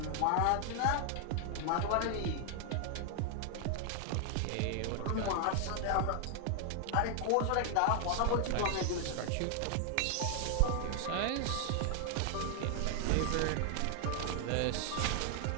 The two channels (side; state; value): both; different; correlation 0.00